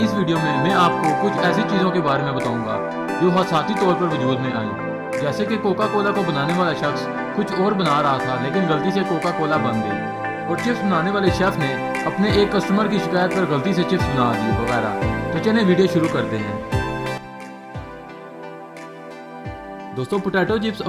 इस वीडियो में मैं आपको कुछ ऐसी चीज़ों के बारे में बताऊंगा जो हादसाती तौर पर वजूद में आई। जैसे कि कोका कोला को बनाने वाला शख्स कुछ और बना रहा था लेकिन गलती से कोका कोला बन गई, और चिप्स बनाने वाले शेफ ने अपने एक कस्टमर की शिकायत पर गलती से चिप्स बना दी वगैरह। तो चलिए वीडियो शुरू करते हैं। दोस्तों पोटैटो चिप्स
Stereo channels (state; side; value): identical; both; correlation 1.00